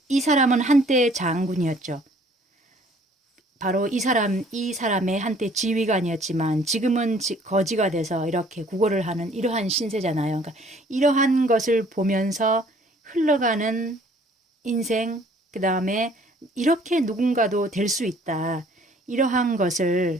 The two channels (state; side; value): normal; both; correlation 0.57